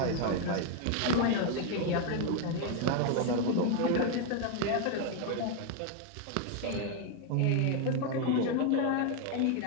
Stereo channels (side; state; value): both; different; correlation 0.01